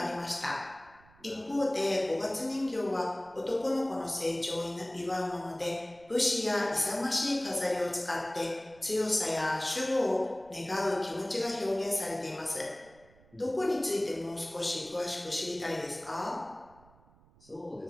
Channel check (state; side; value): noise; right; rumble, 27 dB below the sound